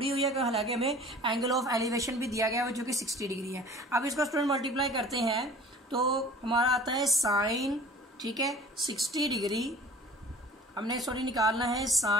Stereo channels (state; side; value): normal; both; correlation 0.46